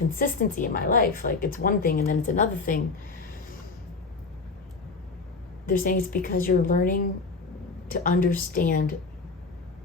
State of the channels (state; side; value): quieter; right; 4.1 dB